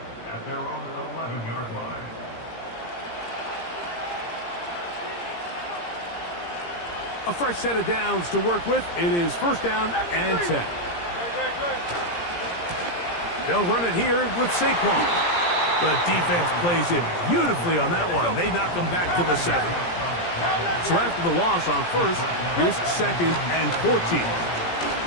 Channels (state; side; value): late; right; 17 ms